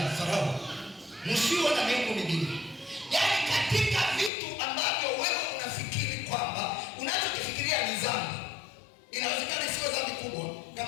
Farao. Msiwe na miungu mingine. Yaani katika vitu ambavyo wewe unafikiri kwamba unachokifikiria ni dhambi, inawezekana isiwe dhambi kubwa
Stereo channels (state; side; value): drops out; right; at 4.3 s